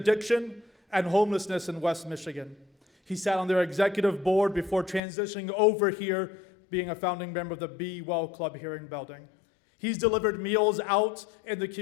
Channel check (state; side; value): drops out; right; at 5.0 s